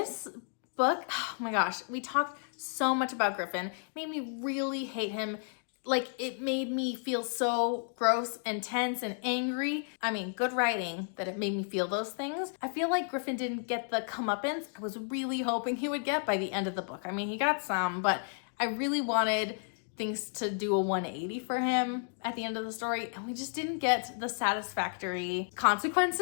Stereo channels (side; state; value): right; silent; 56 dB below the other